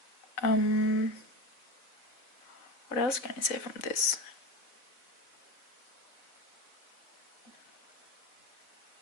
What else can I say from this?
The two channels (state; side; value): late; right; 4.1 ms